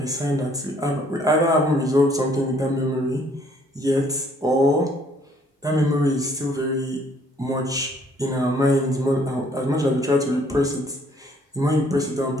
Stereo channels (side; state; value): both; normal; correlation 0.63